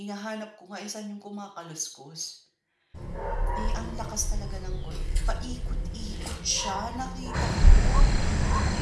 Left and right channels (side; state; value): both; identical; correlation 1.00